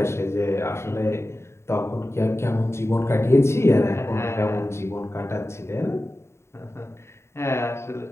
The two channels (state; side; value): late; right; 0.13 ms